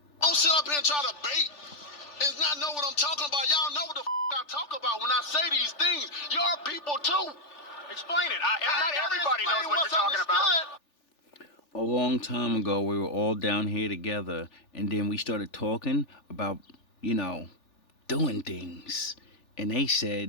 Don't sit up here and try to bait and not know what I'm talking about. Y'all know what the I talk about when I say these things. Your people too. Explain it. Not everybody knows what you're talking about. A long time ago, we were all down here together, and then we started talking about, doing things. And they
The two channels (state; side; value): late; right; 3.4 ms